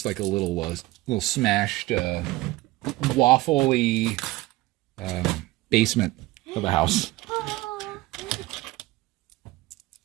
like a little smashed, waffly basement of a house.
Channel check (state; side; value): quieter; left; 18.8 dB